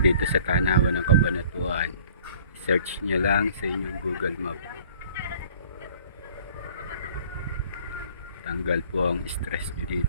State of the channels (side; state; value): both; inverted; correlation -0.52